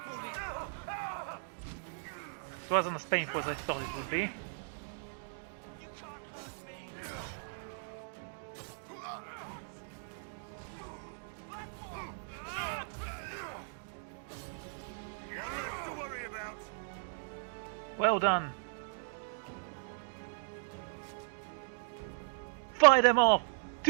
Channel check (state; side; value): silent; left; digital silence